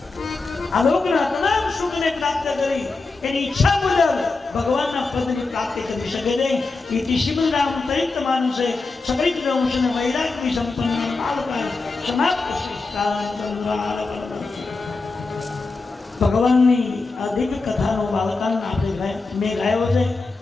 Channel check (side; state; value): right; quieter; 3.8 dB